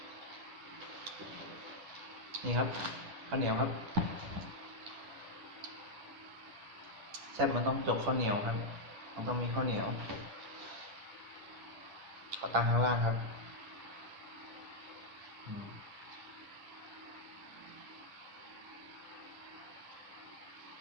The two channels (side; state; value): left; late; 10 ms